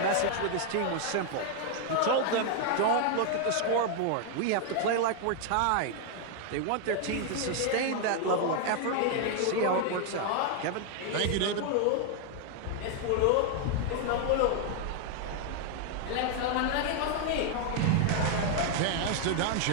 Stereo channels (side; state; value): both; different; correlation 0.00